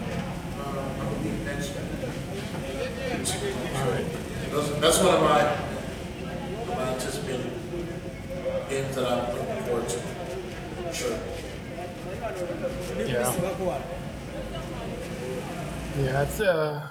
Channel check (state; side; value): identical; both; correlation 1.00